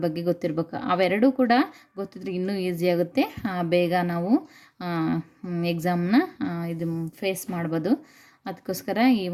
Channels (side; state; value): both; identical; correlation 1.00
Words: ಬಗ್ಗೆ ಗೊತ್ತಿರಬೇಕು. ಅವೆರಡೂ ಕೂಡ ಗೊತ್ತಿದ್ರೆ ಇನ್ನೂ ಈಸಿ ಆಗುತ್ತೆ, ಬೇಗ ನಾವು ಎಕ್ಸಾಮ್ನ ಇದು ಫೇಸ್ ಮಾಡ್ಬೋದು. ಅದಕ್ಕೋಸ್ಕರ ಈ